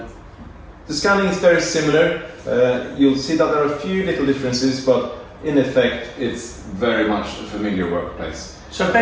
scanning is very similar. You'll see that there are a few little differences, but in effect it's very much a familiar workplace. So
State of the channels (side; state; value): both; identical; correlation 1.00